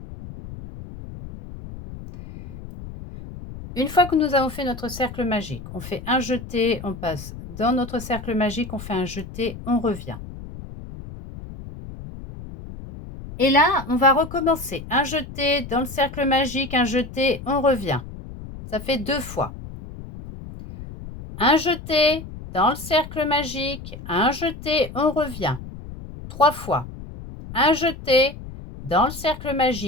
Une fois que nous avons fait notre cercle magique, on fait un jeté, on passe dans notre cercle magique, on fait un jeté, on revient. Et là, on va recommencer. Un jeté dans le cercle magique, un jeté, on revient. Ça fait 2 fois. Un jeté dans le cercle magique, un jeté, on revient. 3 fois. Un jeté dans le cercle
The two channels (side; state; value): left; noise; rumble, 13 dB below the sound